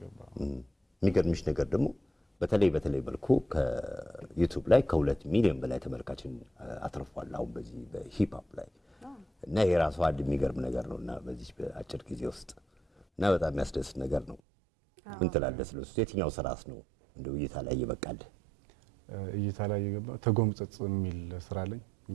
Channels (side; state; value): left; drops out; at 14.4 s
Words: የሚገርምሽ ነገር ደግሞ በተለይ መልኩ ከዩቲዩብ ላይ ከ2 ሚሊዮን በላይ ተመልካችን አትርፏል አሁን በዚህ በሂፕ ሆፕ ላይ እና የራሱ አንድ የሚገርም ነገር ነውና በዚህ በአጭር ጊዜ ውስጥ እና በጣም የሚያስደስት ነገር ነው። ምን ትላለህ ስለሱ? የትኛው ስራስ ነው እንደው እይታ ላይ ይበቃል? እይታ ላይ የገባው ተጎምጽጽ የሚል ስራ ላይ